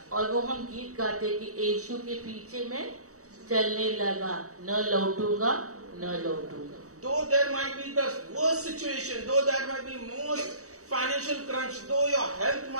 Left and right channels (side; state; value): left; late; 0.65 ms